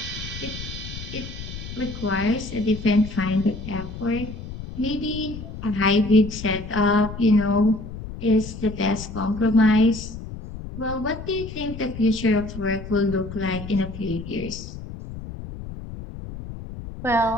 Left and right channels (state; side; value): noise; left; rumble, 10 dB below the sound